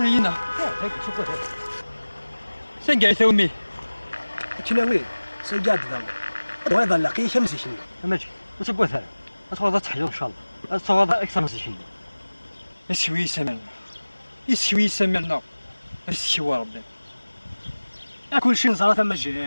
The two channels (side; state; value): both; inverted; correlation -1.00